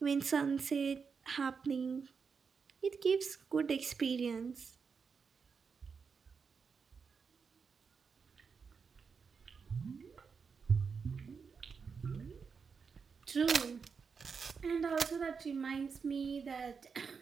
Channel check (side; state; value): left; quieter; 5.6 dB